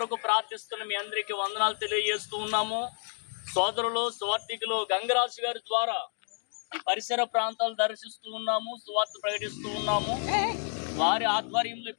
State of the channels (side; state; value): right; silent; 58 dB below the other